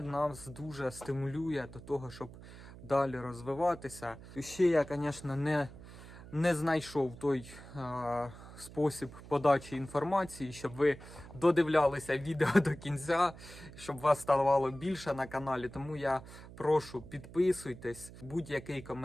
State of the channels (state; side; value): noise; right; hum, 16 dB below the sound